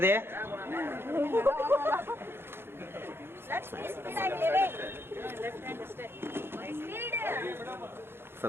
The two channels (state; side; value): late; left; 0.11 ms